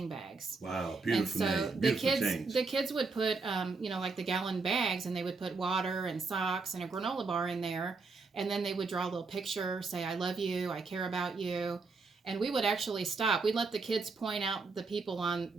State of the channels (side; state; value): left; quieter; 4.2 dB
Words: bags. Wow, beautiful And so name. Beautiful the kids would put, like the gallon bags, and they would put water and socks and a granola bar in there. And then they would draw a little picture, say, I love you, I care about you. And we would actually stop. We'd let the kids point out the people on